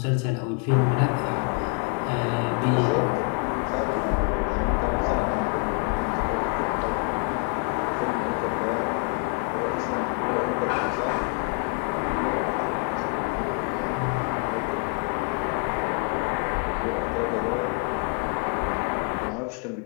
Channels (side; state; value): right; quieter; 37.9 dB